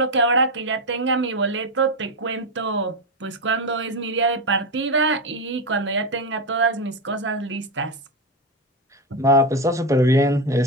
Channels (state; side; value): normal; both; correlation 0.11